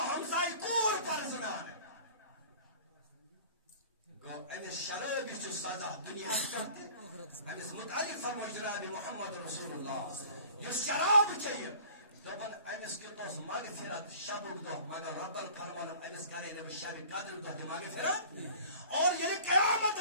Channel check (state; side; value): inverted; both; correlation -0.45